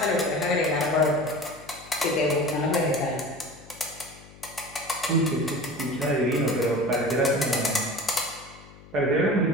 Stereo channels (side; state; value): left; noise; hum, 21 dB below the sound